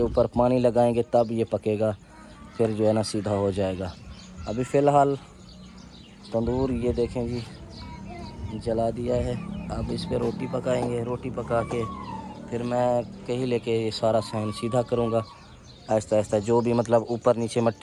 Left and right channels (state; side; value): identical; both; correlation 1.00